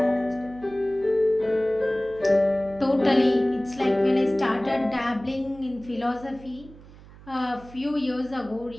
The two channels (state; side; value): noise; right; hum, 20 dB below the sound